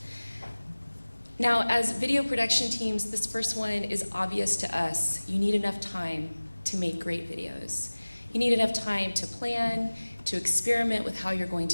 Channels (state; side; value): inverted; both; correlation -1.00